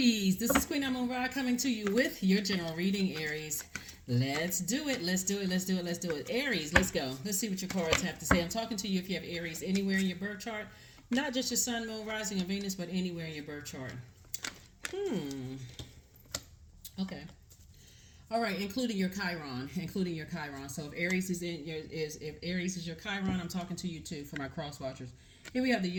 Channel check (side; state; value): both; identical; correlation 1.00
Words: This is Queen Amun Ra coming to you with your general reading, Aries. Let's do it. Let's do it. Let's do it. Let's do it. Aries, let's go. Let's see what your cards have to say. I'm talking to you if you have Aries anywhere in your birth chart, not just your sun, moon, rising, and Venus, but anywhere in your birth chart. Okay. All right, including your Chiron, So if Aries is if Aries is your Chiron, I'm talking to you too for my cross watchers. Here we have the